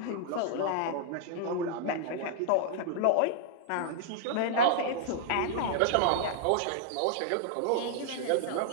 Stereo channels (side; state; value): both; different; correlation -0.01